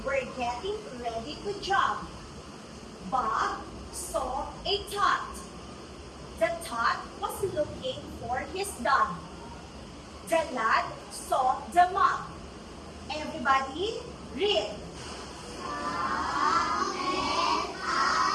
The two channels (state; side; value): identical; both; correlation 1.00